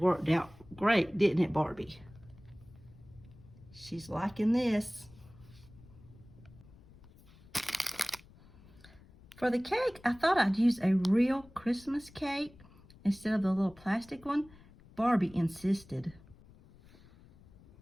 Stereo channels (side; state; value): left; noise; rumble, 23 dB below the sound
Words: out great, didn't it, Barbie? She's liking this. For the cake, I thought I'd use a real Christmas cake instead of the little plastic one. Barbie insisted.